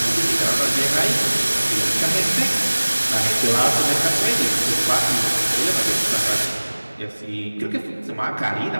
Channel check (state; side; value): inverted; both; correlation -1.00